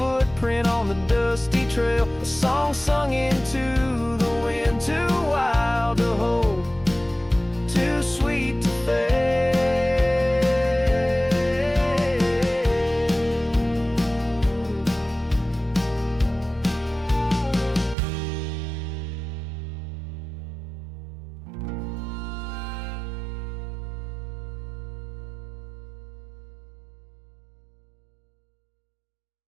on the dusty trail, a song sung into the wind, too wild to hold, too sweet to fail.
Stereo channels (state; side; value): drops out; left; at 17.9 s